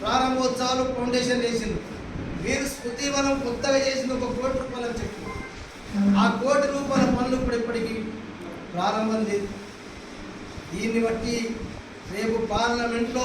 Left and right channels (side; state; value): both; identical; correlation 1.00